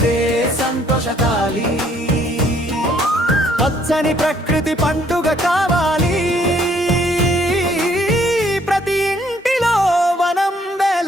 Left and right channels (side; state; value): both; normal; correlation 0.64